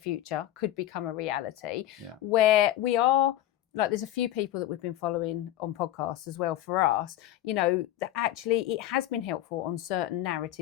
could become a reality where we are, like there's a few people that we've been following on podcasts as well for us, that actually it has been helpful on certain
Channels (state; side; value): quieter; right; 13.3 dB